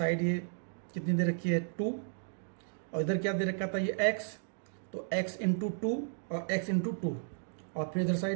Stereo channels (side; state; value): left; silent; digital silence